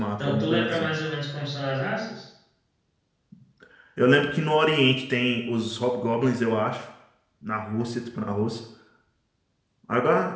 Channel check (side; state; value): both; identical; correlation 1.00